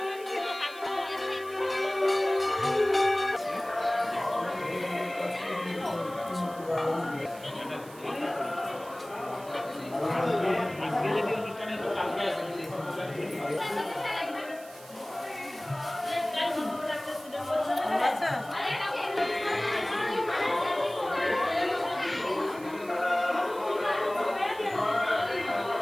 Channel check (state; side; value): noise; right; hiss, 20 dB below the sound